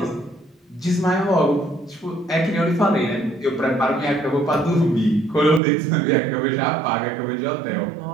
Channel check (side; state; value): left; drops out; at 5.6 s